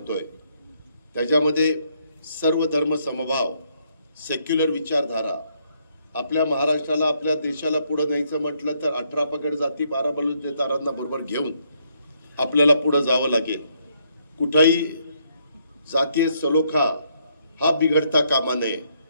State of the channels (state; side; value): inverted; both; correlation -0.73